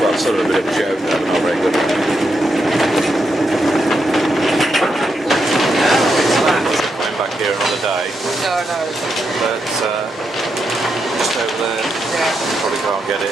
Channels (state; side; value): normal; both; correlation 0.82